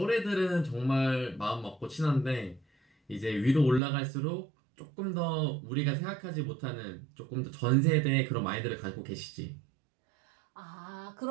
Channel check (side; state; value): left; drops out; at 3.8 s